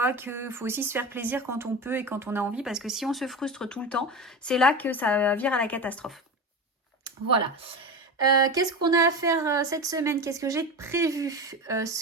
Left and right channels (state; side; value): normal; both; correlation 0.25